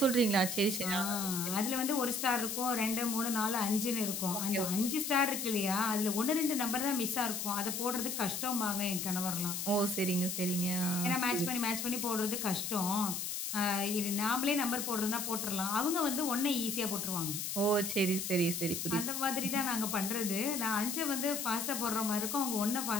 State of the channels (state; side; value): noise; left; hiss, 3 dB below the sound